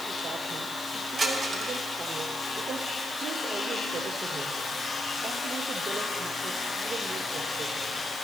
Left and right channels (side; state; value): right; noise; hiss, 11 dB below the sound